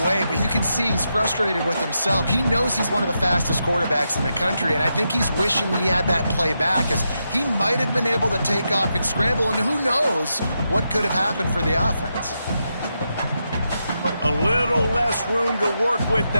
but you can see he's frustrated with himself. He knows he's one of the fastest quarterbacks in the country, and I think he's wishing he had that play back, as he might have been able to take off and scramble, and who knows what could have happened for the offense. A little less room to work with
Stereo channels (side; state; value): both; inverted; correlation -0.85